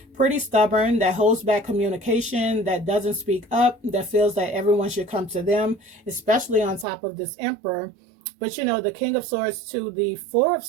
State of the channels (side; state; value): left; drops out; at 6.9 s